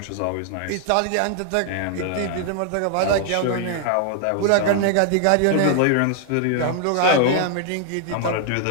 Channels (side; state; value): both; different; correlation 0.00